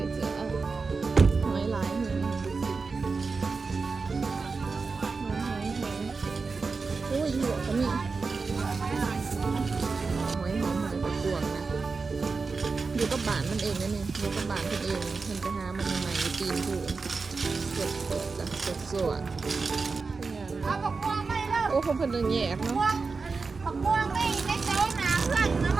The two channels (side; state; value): left; quieter; 4.4 dB